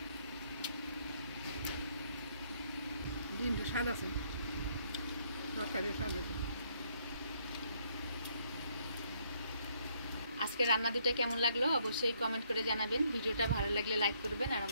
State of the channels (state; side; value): inverted; both; correlation -0.69